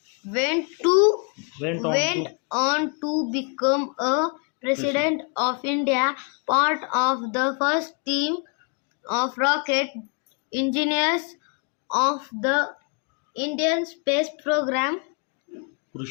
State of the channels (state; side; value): quieter; right; 37.3 dB